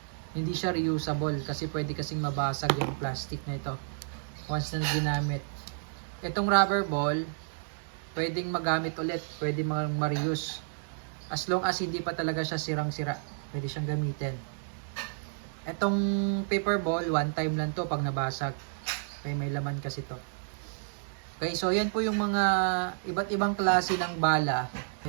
hindi siya reusable kasi pwede kasing mabasag yung plastic na ito once na ginamit. Itong rubber ball, pwedeng magamit ulit, pwede ma-reuse. As long as hindi pa talaga siya sirang-sira, pwede siyang gamitin. Itong paper ball, one time lang to pag nabasag. Okay, may laman kasi to. Okay, so yan po yung mga iba't ibang klase ng bala.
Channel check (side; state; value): left; silent; digital silence